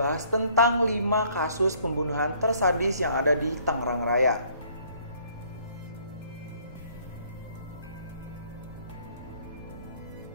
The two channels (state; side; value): inverted; both; correlation -0.61